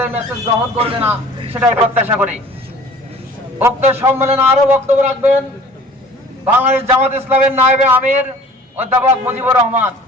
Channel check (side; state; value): both; normal; correlation 0.49